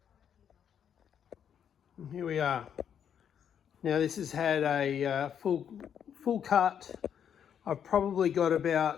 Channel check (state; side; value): quieter; right; 8.5 dB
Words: And here we are. Now this has had a full cut. I've probably got